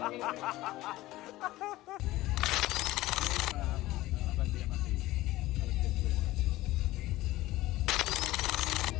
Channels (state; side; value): quieter; right; 17.3 dB